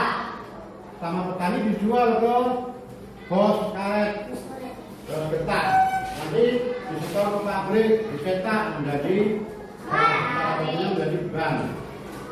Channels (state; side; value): identical; both; correlation 1.00